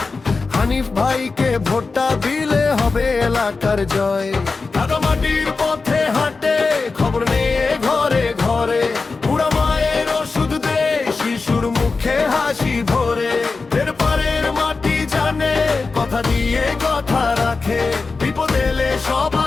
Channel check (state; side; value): quieter; right; 4.1 dB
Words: হানিফ ভাইকে ভোটটা দিলে হবে এলাকার জয়। মাটির পথে হাঁটে খবর নিয়ে ঘরে ঘরে, বুড়া মায়ের ওষুধ দে শিশুর মুখে হাসি ভরে। এর পারের মাটি জানে কথা দিয়ে কথা রাখে, বিপদ এলে